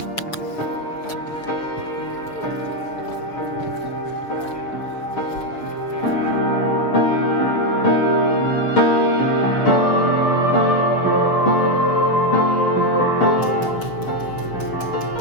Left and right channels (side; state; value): right; late; 6.6 ms